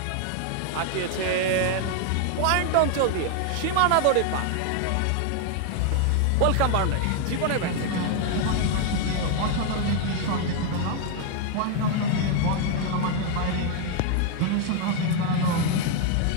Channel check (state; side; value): different; both; correlation 0.00